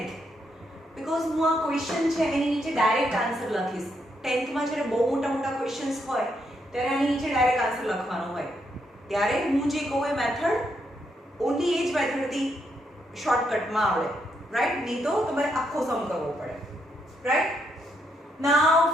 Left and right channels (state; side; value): normal; both; correlation 0.78